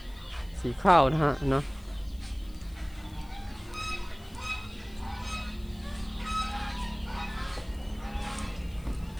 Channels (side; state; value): left; noise; hiss, 25 dB below the sound